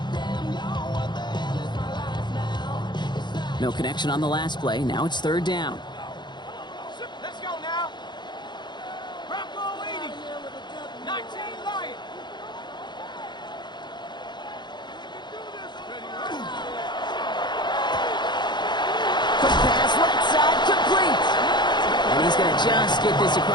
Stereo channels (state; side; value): late; right; 0.21 ms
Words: No connection on the last play. Now it's 3rd down. Let's go now. Bronco 80. 19 Lion. Quick pass, right side, complete. And he's going to just get this